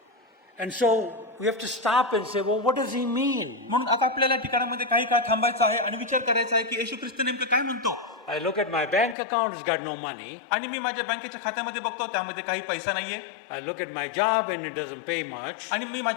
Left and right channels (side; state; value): right; drops out; at 9.2 s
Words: And so we have to stop and say, well, what does he mean? म्हणून आता आपल्याला ठिकाणामध्ये काही काळ थांबायचं आहे आणि विचार करायचा आहे की येशू ख्रिस्त नेमकं काय म्हणतो. I look at my bank account, it's got no money. आणि मी माझ्या बँकेच्या खात्यामध्ये बघतो त्यामध्ये काही पैसा नाहीये. I look at my job and it doesn't pay much. आणि मी